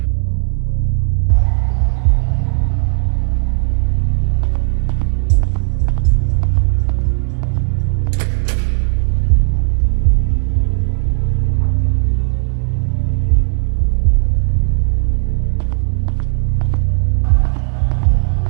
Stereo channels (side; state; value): left; silent; digital silence